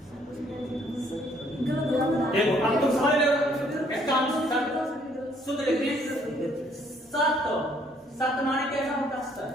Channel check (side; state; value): both; normal; correlation 0.64